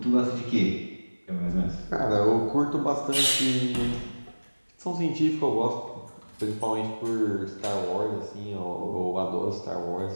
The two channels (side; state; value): both; inverted; correlation -1.00